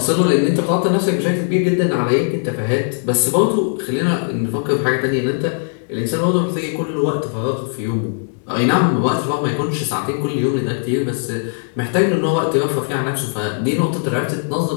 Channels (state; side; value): silent; right; digital silence